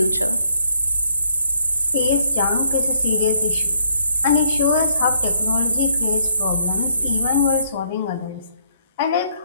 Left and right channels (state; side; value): inverted; both; correlation -0.69